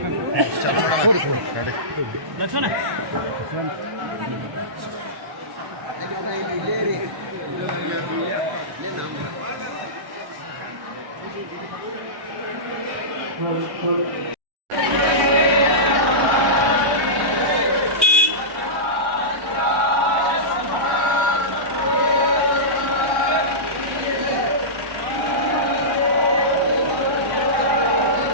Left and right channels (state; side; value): late; left; 1.1 ms